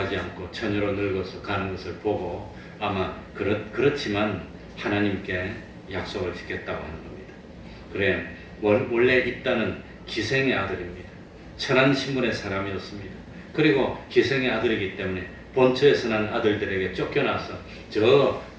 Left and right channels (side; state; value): both; identical; correlation 1.00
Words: 않고 처녀로 늙어서 가는 것을 보고 아마 그렇지만 하나님께 약속을 지켰다고 하는 겁니다. 그래 원래 입다는 기생의 아들입니다. 천한 신분의 사람이었습니다. 그리고 기생의 아들이기 때문에 본처에서 난 아들들에게 쫓겨나서 저